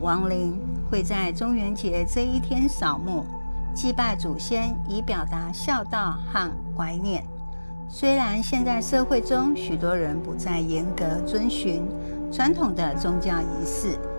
灵，会在中元节这一天扫墓，祭拜祖先，以表达孝道和怀念。虽然现在社会中许多人不再严格遵循传统的宗教仪式，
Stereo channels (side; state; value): both; inverted; correlation -1.00